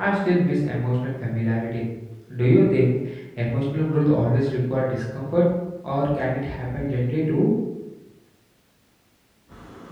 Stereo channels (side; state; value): both; identical; correlation 1.00